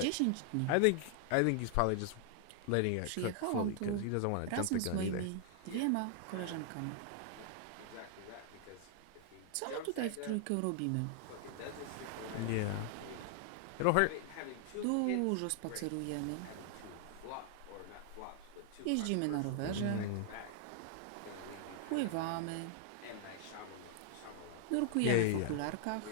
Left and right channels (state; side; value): different; both; correlation 0.00